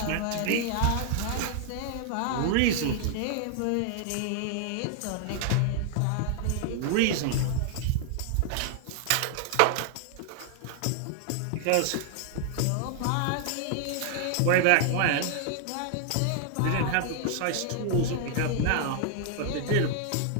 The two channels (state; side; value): different; both; correlation -0.01